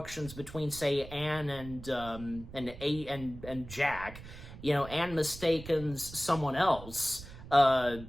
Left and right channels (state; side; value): noise; right; rumble, 14 dB below the sound